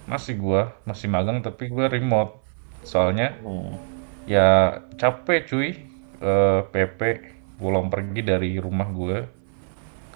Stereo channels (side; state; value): left; silent; 63 dB below the other